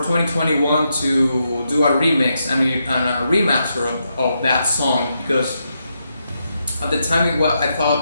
to do a remix and a remaster of that song, because at the time I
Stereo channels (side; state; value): both; inverted; correlation -0.83